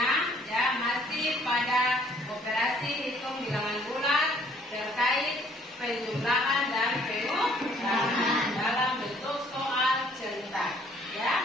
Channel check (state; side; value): normal; both; correlation 0.60